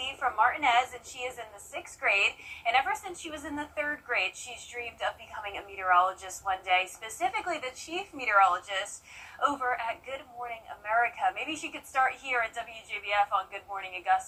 from Martinez, and she is in the 6th grade. And ever since she was in the 3rd grade, she's dreamed of becoming a meteorologist one day, specifically the chief meteorologist over at Good Morning America. Maybe she could start here at WJBF on Good Morning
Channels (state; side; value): identical; both; correlation 1.00